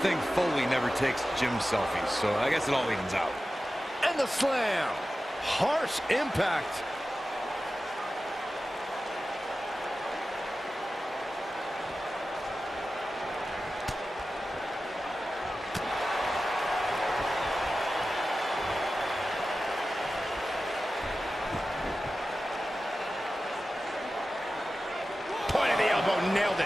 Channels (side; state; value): both; normal; correlation 0.94